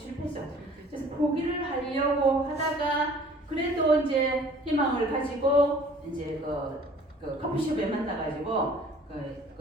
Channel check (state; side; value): normal; both; correlation 0.51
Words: 그래서 포기를 하려고 하다가 그래도 이제 희망을 가지고 이제 그 커피숍에 만나가지고